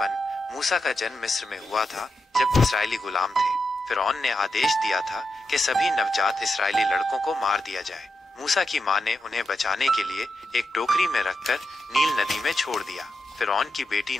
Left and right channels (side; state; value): both; normal; correlation 0.87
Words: मूसा का जन्म मिस्र में हुआ था जब इस्राएली गुलाम थे। फिरौन ने आदेश दिया था कि सभी नवजात इस्राएली लड़कों को मार दिया जाए। मूसा की मां ने उन्हें बचाने के लिए एक टोकरी में रखकर नील नदी में छोड़ दिया। फिरौन की बेटी